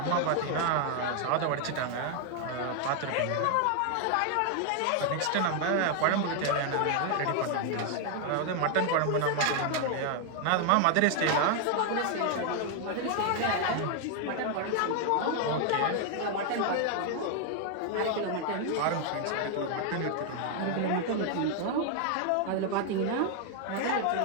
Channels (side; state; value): both; different; correlation 0.00